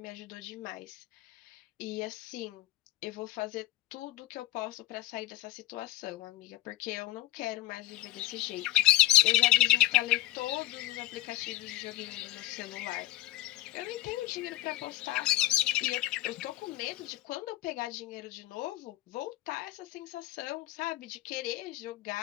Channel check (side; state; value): right; quieter; 15.9 dB